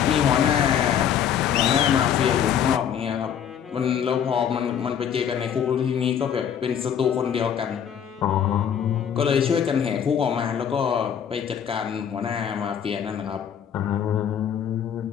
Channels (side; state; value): right; quieter; 8.6 dB